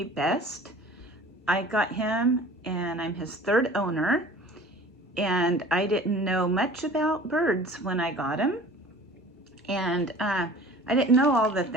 best. I got him and I'm his third owner, and I didn't know much about birds when I got him, and I didn't know all the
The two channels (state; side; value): normal; both; correlation 0.45